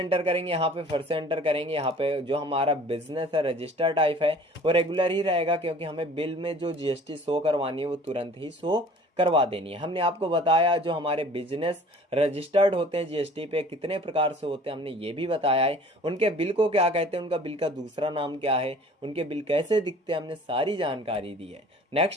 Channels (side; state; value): both; normal; correlation 0.49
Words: करेंगे यहाँ पे फिर से एंटर करेंगे, यहाँ पे जो हमारा बिजनेस है रजिस्टर टाइप है वो रेगुलर ही रहेगा, क्योंकि हमें बिल में जो जीएसटी शो करवानी है वो तुरंत ही शो करवा देनी है। हमने आपको बताया जो हमारे बिजनेस रजिस्टर्ड होते हैं जीएसटी पे कितने प्रकार से होते हैं, हमने ये भी बताया है। उनके बिल को क्या कहते हैं, उनका बिल का दूसरा नाम क्या है, उनके बिल कैसे दिखते हैं, हमने सारी जानकारी दी है।